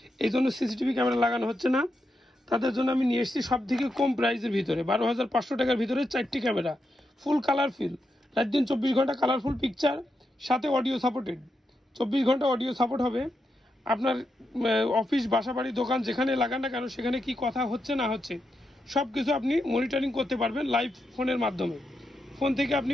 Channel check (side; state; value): both; normal; correlation 0.85